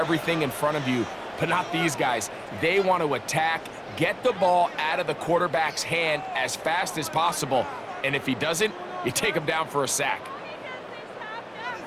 in front of you. But not these guys. They want to attack, get the ball out of the quarterback's hand as fast as possible. And if he doesn't, you take him down for a sack.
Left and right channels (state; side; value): identical; both; correlation 1.00